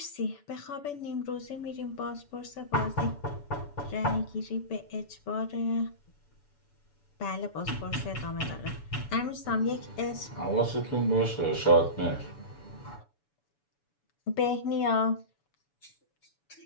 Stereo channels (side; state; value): right; late; 7.0 ms